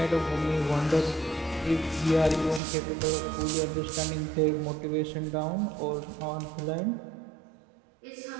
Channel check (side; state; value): left; drops out; at 2.6 s